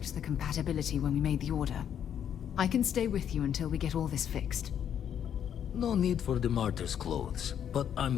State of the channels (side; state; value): right; quieter; 9.1 dB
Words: the compatibility when we made the order. I can stay with you until we get all this fixed. No need for the martyr's clothes, but